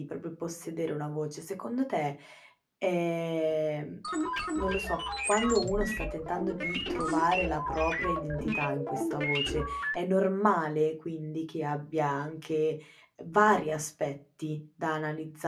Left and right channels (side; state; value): both; identical; correlation 1.00